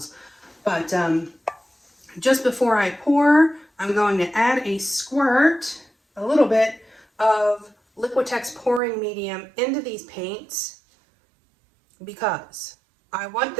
But just before I pour, I'm going to add a squirt, a little bit of Liquitex pouring medium into these paints because I want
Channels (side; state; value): left; drops out; at 8.8 s